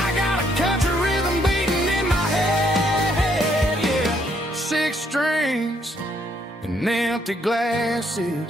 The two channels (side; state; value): both; normal; correlation 0.71